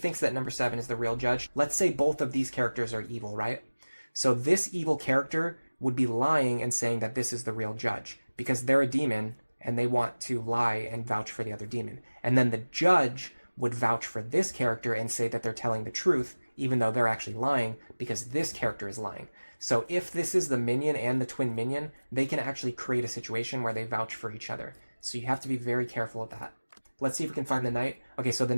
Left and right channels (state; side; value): inverted; both; correlation -1.00